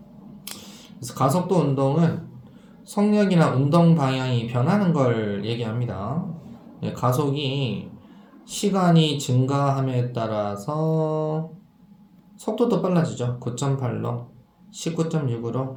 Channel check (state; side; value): identical; both; correlation 1.00